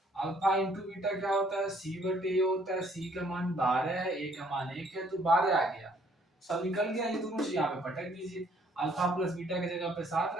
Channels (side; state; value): both; normal; correlation 0.63